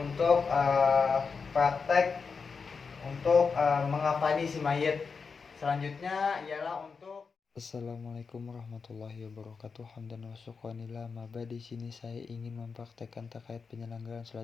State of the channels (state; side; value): quieter; right; 5.2 dB